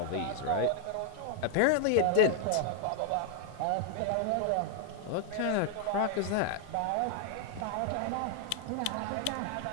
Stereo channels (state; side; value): different; both; correlation 0.00